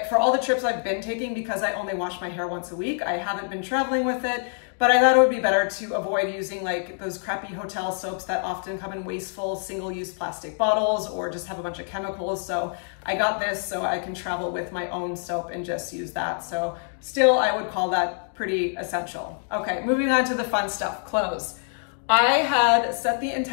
for all the trips I've been taking, because I only wash my hair once a week, I haven't been traveling with it. But I thought it would be better to avoid using like those crappy hotel soaps that often come in wasteful single-use plastic bottles or just have a bunch of chemicals. So I got this so I can travel with my own soap and just use that. So still, I would call that pretty essential. Okay, moving on to the fun stuff, clothes. I had set the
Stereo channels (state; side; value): silent; right; 61 dB below the other